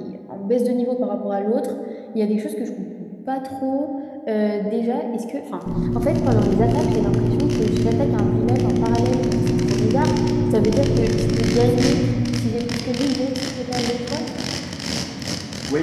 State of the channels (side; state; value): both; identical; correlation 1.00